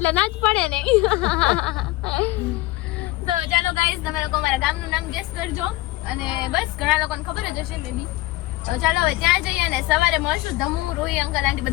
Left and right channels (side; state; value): right; quieter; 19.0 dB